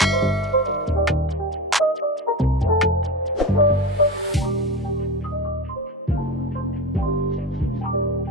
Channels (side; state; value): both; normal; correlation 0.26